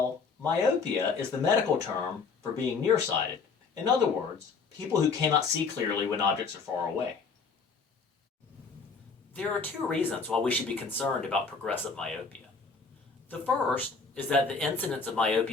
myopia is the medical term for being nearsighted. In other words, people who cannot see clearly when objects are far away. There are two reasons why we should be concerned about progressive myopia. The first is that the incidence of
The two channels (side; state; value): right; quieter; 4.9 dB